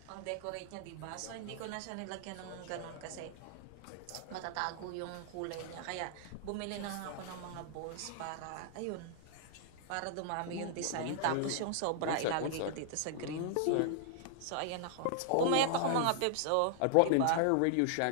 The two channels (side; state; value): both; different; correlation -0.01